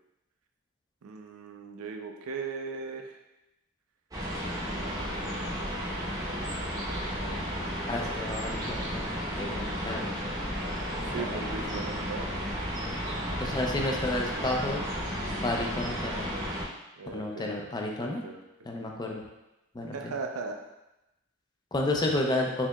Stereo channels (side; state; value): both; normal; correlation 0.41